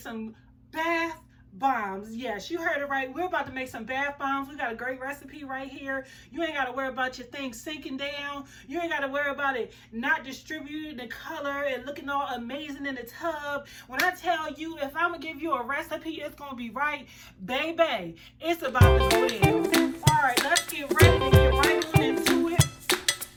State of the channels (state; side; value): identical; both; correlation 1.00